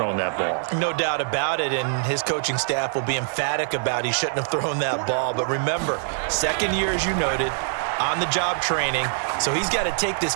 that ball. No doubt about it, and his coaching staff will be emphatic about he shouldn't have thrown that ball. But remember, second year, as you noted, on-the-job training, so he's got to take this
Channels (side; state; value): left; silent; digital silence